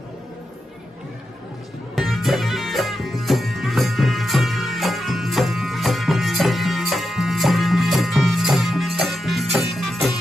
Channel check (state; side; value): normal; both; correlation 0.87